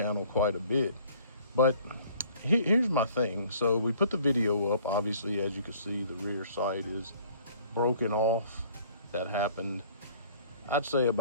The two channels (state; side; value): inverted; both; correlation -0.54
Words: quite a bit. But here's my thing. So we put the video up. Obviously, as you can see, the rear sight is broken off. That happened, I'd say,